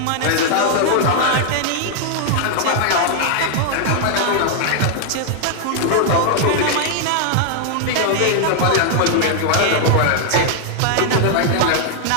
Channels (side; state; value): both; different; correlation 0.00